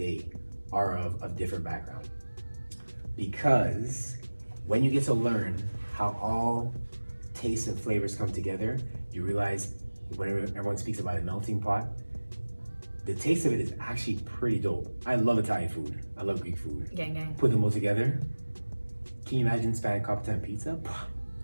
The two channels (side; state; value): both; inverted; correlation -1.00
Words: are of different background. Because when you get to learn how all tastes and flavors come together, you realize whenever everyone speaks about a melting pot, the taste of it is actually pretty dope. I love Italian food. I love Greek food. Gang, gang. Put them all together. Can you imagine Spanish Capitan pizza?